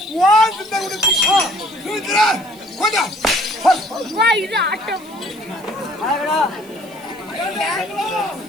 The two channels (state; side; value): noise; right; hiss, 24 dB below the sound